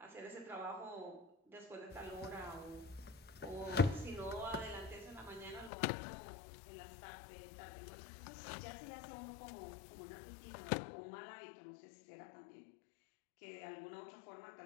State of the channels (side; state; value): right; drops out; at 5.7 s